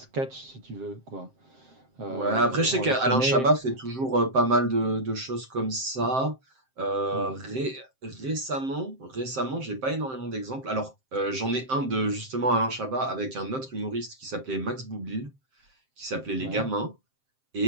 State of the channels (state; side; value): late; left; 7.6 ms